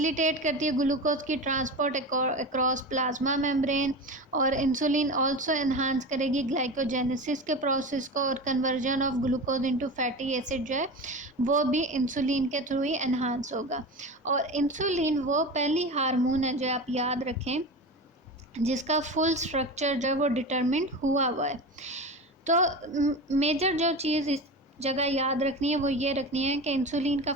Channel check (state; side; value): normal; both; correlation 0.27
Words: करती है ग्लूकोज की ट्रांसपोर्ट अक्रॉस प्लाज्मा मेम्ब्रेन। और इंसुलिन आल्सो एनहांस करेगी ग्लाइकोजेनेसिस के प्रोसेस को, और conversion of glucose into fatty acid जो है वो भी इंसुलिन के थ्रू ही एनहांस होगा। और इंसुलिन वो पहली हार्मोन है जो आप याद रखें जिसका फुल स्ट्रक्चर जो है वो डिटरमिंड हुआ है। तो मेजर जो चीज़ इस जगह याद रखनी है वो ये रखनी है कि इंसुलिन का